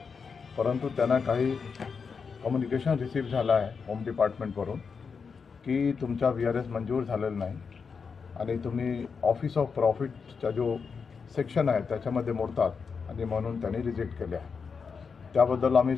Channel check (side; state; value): right; quieter; 5.6 dB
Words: परंतु त्यांना काही कम्युनिकेशन रिसीव्ह झाला आहे होम डिपार्टमेंटवरून की तुमचा VRS मंजूर झालेला नाही आणि तुम्ही ऑफिस ऑफ प्रॉफिटचा जो सेक्शन आहे त्याच्यामध्ये मोडतात आणि म्हणून त्यांनी रिजेक्ट केले आहे। त्याबद्दल आम्ही